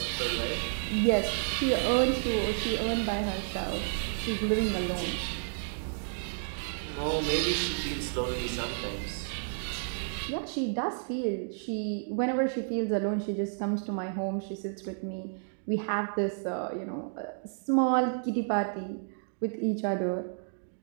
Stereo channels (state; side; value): silent; left; digital silence